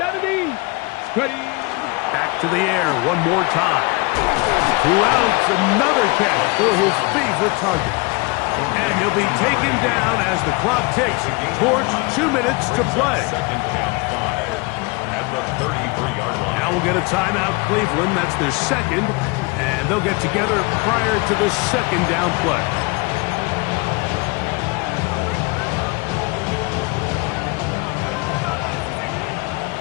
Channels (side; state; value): right; quieter; 27.1 dB